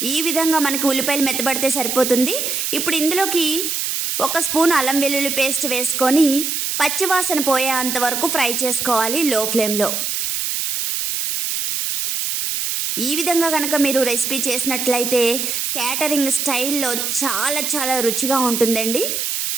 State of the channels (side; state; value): right; noise; hiss, 1 dB below the sound